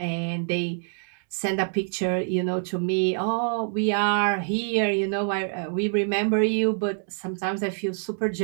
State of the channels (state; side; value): silent; left; digital silence